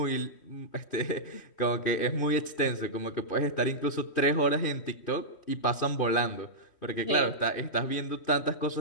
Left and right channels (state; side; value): late; right; 3.1 ms